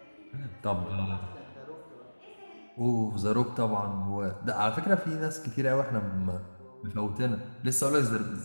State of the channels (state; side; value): inverted; both; correlation -1.00